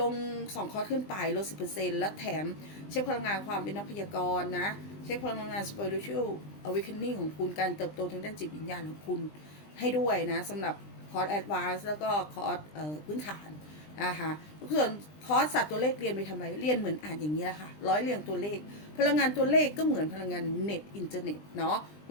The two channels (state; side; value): late; right; 20 ms